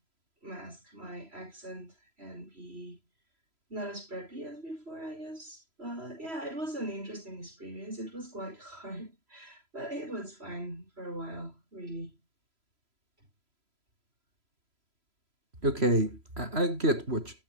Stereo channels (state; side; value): late; left; 3.0 ms